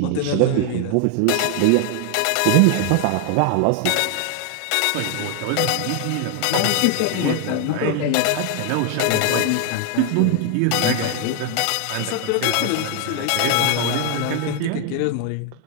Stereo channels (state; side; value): different; both; correlation 0.00